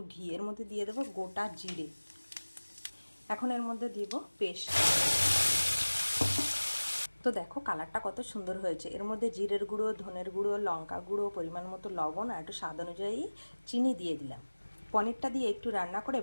ঘি, এর মধ্যে দিয়ে দেবো গোটা জিরে। এখন এর মধ্যে দিব পেস্ট। তো দেখো কালারটা কত সুন্দর হয়েছে। এর মধ্যে জিরের গুঁড়ো, ধনের গুঁড়ো, লঙ্কা গুঁড়ো, পরিমাণ মতো লবণ আর একটু স্বাদ অনুযায়ী চিনি দিয়ে দিলাম। পনিরটা দিয়ে একটু রান্না করে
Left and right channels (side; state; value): both; inverted; correlation -1.00